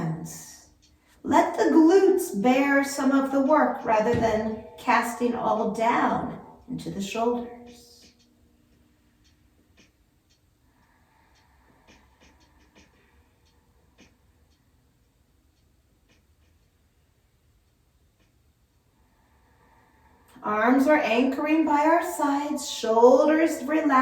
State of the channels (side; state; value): both; identical; correlation 1.00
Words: Let the glutes bear some of the work rather than casting all down into the shoulders. Arms are anchoring by our sides, shoulders